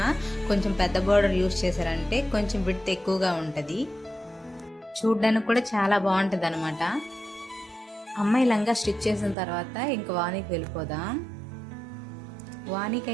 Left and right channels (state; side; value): drops out; left; at 9.3 s